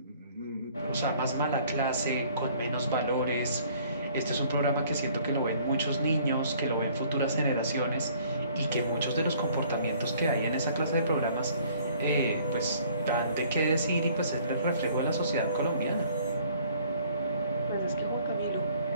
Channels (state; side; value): inverted; both; correlation -0.57